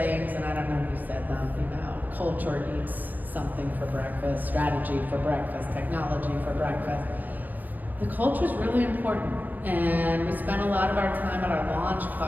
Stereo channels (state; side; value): late; left; 0.083 ms